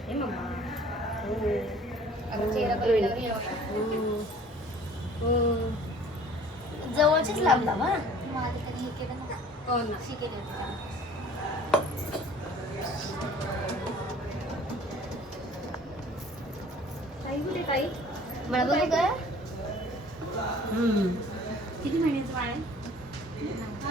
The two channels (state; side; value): normal; both; correlation 0.51